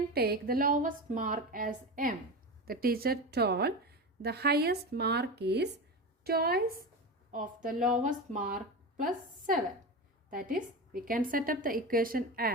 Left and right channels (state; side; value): normal; both; correlation 0.23